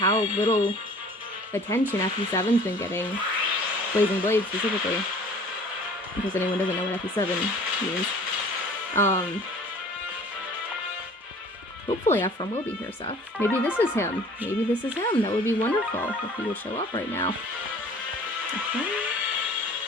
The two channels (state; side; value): normal; both; correlation 0.49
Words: little attention FE7's been getting. Blazing Blade, specifically. In case anyone doesn't know what FE7 means. Hopefully Ephraim will be here, Seth. Maybe this is him. Maybe this is him. That would be wonderful if he would show up right now. Okay.